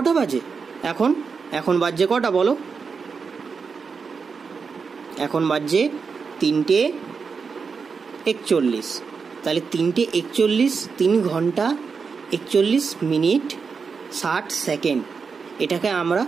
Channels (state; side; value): quieter; left; 5.4 dB